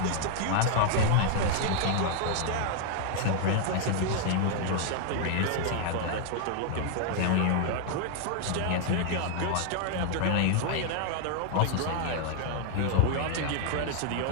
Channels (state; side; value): different; both; correlation 0.00